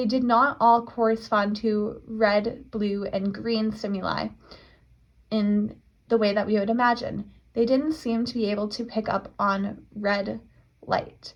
did not all correspond to red, blue, and green stimuli in the way that we would imagine. They didn't seem to be able to pick up on red light,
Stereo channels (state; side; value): identical; both; correlation 1.00